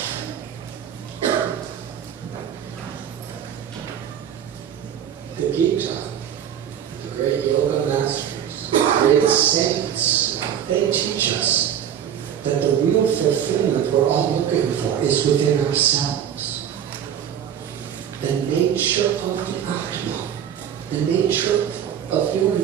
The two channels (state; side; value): quieter; left; 9.4 dB